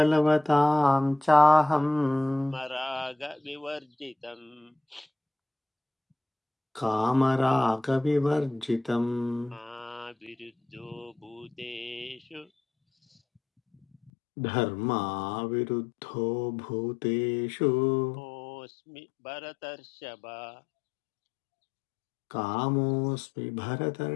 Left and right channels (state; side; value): drops out; right; at 14.1 s